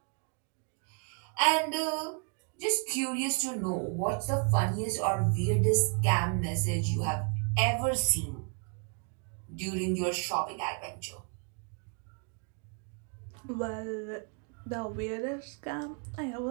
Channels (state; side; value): quieter; left; 39.5 dB